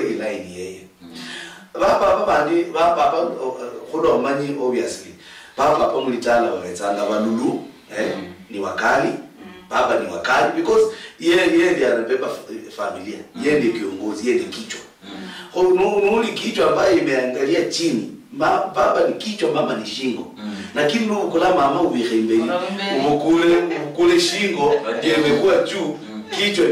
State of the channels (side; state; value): both; identical; correlation 1.00